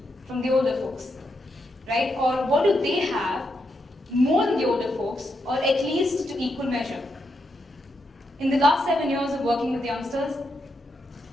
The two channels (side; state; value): both; normal; correlation 0.82